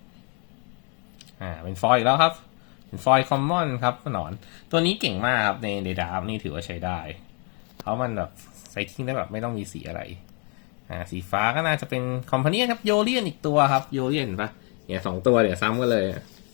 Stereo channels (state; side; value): quieter; right; 36.9 dB